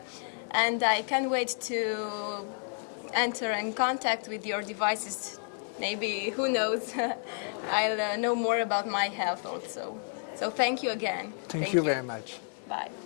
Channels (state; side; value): silent; right; 57 dB below the other